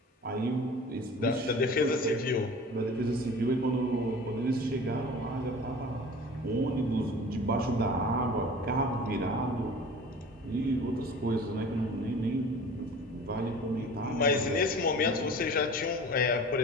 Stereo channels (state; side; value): normal; both; correlation 0.41